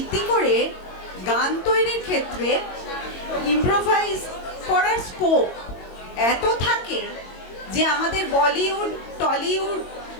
করে গান তৈরির ক্ষেত্রে ইম্প্রোভাইজ করার স্কোপ এত থাকে যে আমাদের বলিউড, টলিউড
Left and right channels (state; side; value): late; right; 22 ms